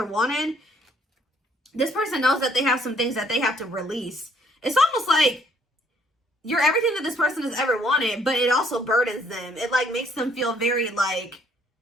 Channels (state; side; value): normal; both; correlation 0.64